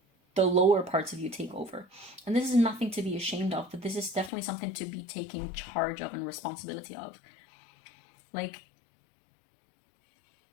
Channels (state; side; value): drops out; right; at 4.3 s